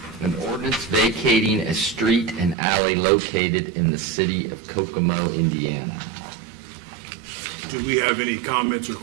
An ordinance vacating a street and alley located in the city of Kokomo, Indiana. Do we have any comments or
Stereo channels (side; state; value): left; drops out; at 2.6 s